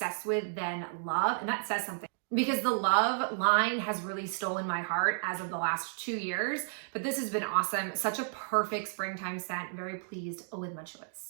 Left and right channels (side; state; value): left; silent; digital silence